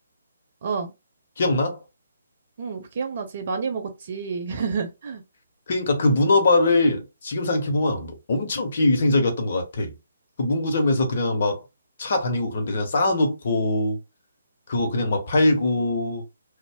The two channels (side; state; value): both; inverted; correlation -0.77